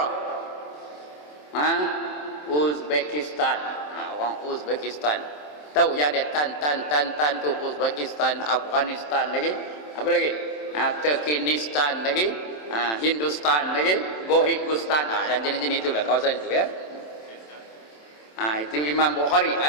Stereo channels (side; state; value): right; late; 27 ms